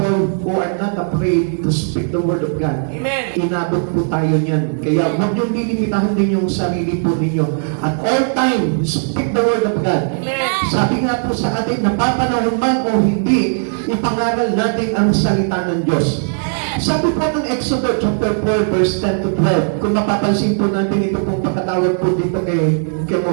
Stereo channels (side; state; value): left; silent; digital silence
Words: who are not afraid to speak the word of God. Inabot po tayo niyan. Kaya huwag niyong lilimitahan din yung sarili po ninyo. At all time, speak the word of God. Sabi nga po sa atin, napapanahon man o hindi, ipangaral natin ang salita ng Diyos. Sabi po ng Exodus chapter 4 verse 10 to 12, kung mapapansin po natin ito pong pagkatawag po dito kay